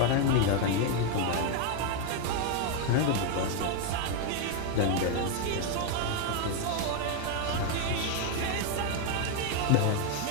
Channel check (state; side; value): different; both; correlation 0.01